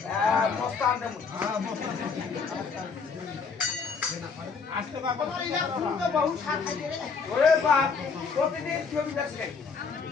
মস্ত আনতে তোমার ইলা ফুল তো বহু স্বাদ খাইতে রে ওরে বাপ প্রতিদিন ছবি দেখে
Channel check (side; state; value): right; quieter; 5.2 dB